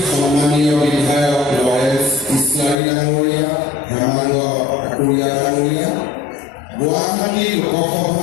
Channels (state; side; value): drops out; right; at 2.8 s